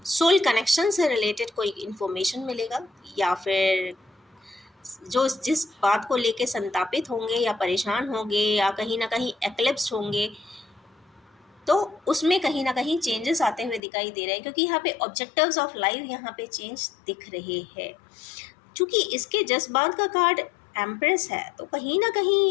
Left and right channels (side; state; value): right; drops out; at 13.8 s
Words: सोल कनेक्शन से रिलेटेड कोई इन्फॉर्मेशन मिलेगा, या फिर जो जिस बात को लेके संतापित होंगे या परेशान होंगे या कहीं ना कहीं एक्लिप्स होंगे, तो उसमें कहीं ना कहीं चेंजेस आते हुए दिखाई दे रहे हैं, क्योंकि यहाँ पे ऑब्जेक्टिव्स ऑफ लाइफ यहाँ पे चेंज दिख रहे हैं। चूँकि इसके जज़्बात का कार्ड एम्प्रेस है, तो कहीं न